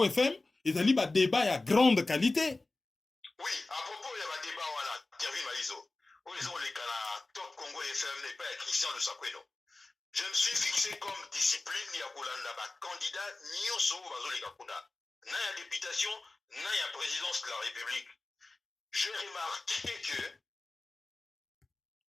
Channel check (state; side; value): quieter; right; 3.2 dB